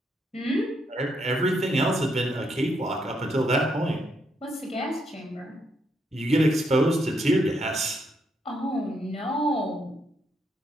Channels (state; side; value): normal; both; correlation 0.77